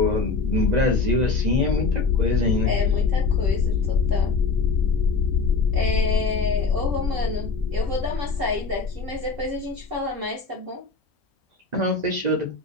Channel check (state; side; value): quieter; right; 4.3 dB